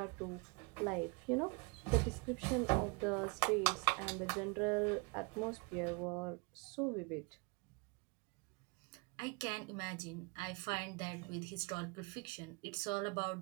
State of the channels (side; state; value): left; quieter; 29.7 dB